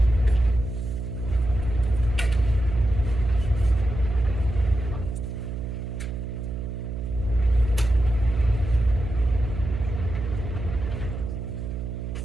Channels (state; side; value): noise; right; hum, 5 dB below the sound